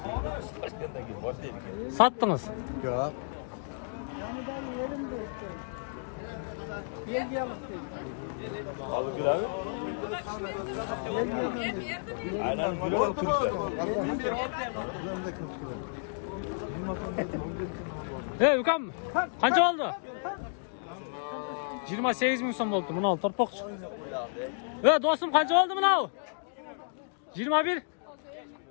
Sattınız. Yok. Ukam, qancha oldi? 28 ming so'm bo'ldi. Buni ol, torpoqchi. Do'stim, qancha oldi buni? 21.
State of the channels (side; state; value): right; silent; digital silence